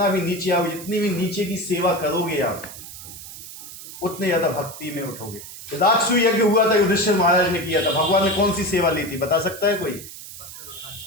भी नीचे आओगे, जितनी भी नीचे की सेवा करोगे आप, उतने ज्यादा भक्ति में उठोगे। राजसूय यज्ञ हुआ था, युधिष्ठिर महाराज ने किया था। भगवान ने कौन सी सेवा ली थी? बता सकता है कोई?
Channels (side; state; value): right; noise; hiss, 13 dB below the sound